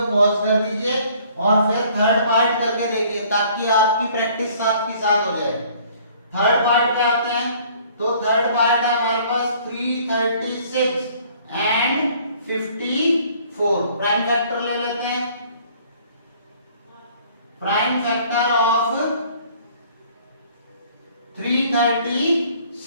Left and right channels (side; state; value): both; inverted; correlation -0.57